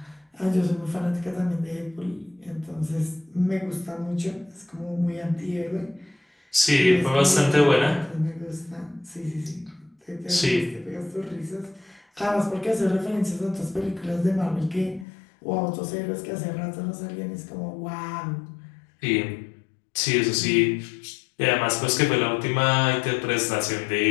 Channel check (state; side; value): drops out; right; at 15.1 s